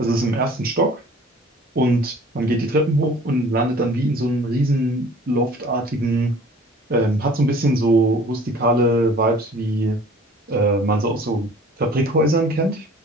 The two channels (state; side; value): normal; both; correlation 0.49